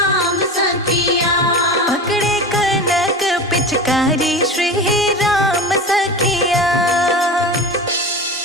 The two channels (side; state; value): both; normal; correlation 0.29